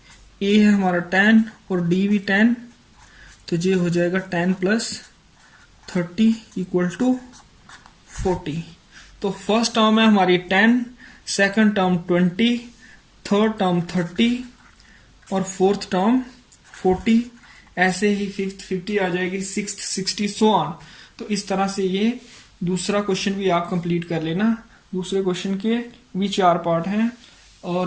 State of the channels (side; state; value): both; identical; correlation 1.00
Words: a है हमारा 10 और d भी 10, तो ये हो जाएगा 10 प्लस 30 इक्वल टू 40। तो फर्स्ट टर्म है हमारी 10, सेकंड टर्म 20, थर्ड टर्म 30 और फोर्थ टर्म 40। ऐसे ही फिफ्थ 50 आ जाएगी, सिक्स्थ 60, सो ऑन। तो इस तरह से ये दूसरा क्वेश्चन भी आप कंप्लीट कर लेना। दूसरे क्वेश्चन के भी 4 पार्ट हैं